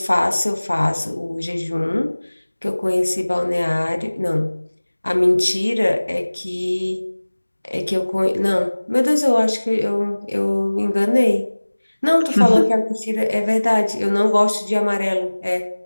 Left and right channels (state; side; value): inverted; both; correlation -1.00